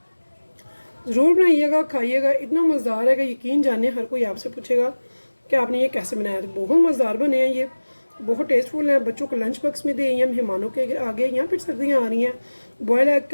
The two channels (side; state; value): both; inverted; correlation -1.00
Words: ज़रूर बनाइएगा, खाइएगा, इतना मज़ेदार है कि यकीन जाने हर कोई आपसे पूछेगा कि आपने ये कैसे बनाया। तो बहुत मज़ेदार बने हैं ये, बहुत टेस्टफुल हैं। बच्चों को लंच बॉक्स में दें या मेहमानों के आगे, या फिर सर्दियाँ आ रही हैं, बॉयल एग